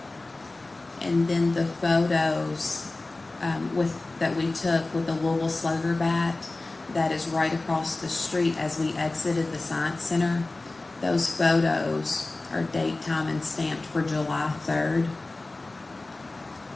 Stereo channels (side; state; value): right; quieter; 3.1 dB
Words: And then the photos that we took with the Louisville Slugger bat that is right across the street as we exited the Science Center. Those photos are date, time, and stamped for July 3rd,